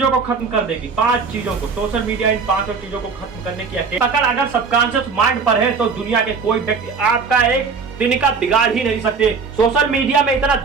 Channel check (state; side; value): quieter; left; 5.1 dB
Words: को खत्म कर देगी। 5 चीजों को, सोशल मीडिया इन 5 चीजों को खत्म करने की पकड़ अगर सबकॉन्शियस माइंड पर है तो दुनिया के कोई व्यक्ति आपका एक दिन का बिगाड़ ही नहीं सकते। सोशल मीडिया में इतना